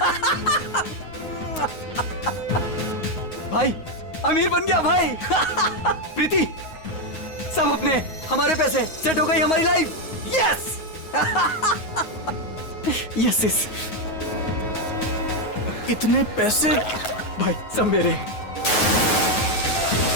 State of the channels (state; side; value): late; right; 9.5 ms